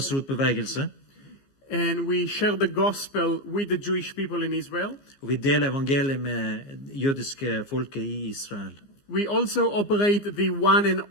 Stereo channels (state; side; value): late; right; 15 ms